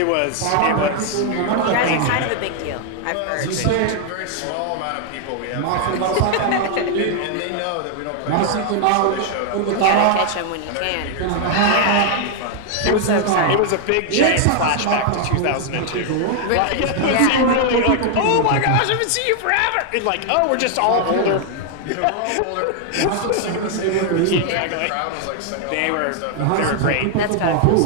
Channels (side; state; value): both; different; correlation 0.00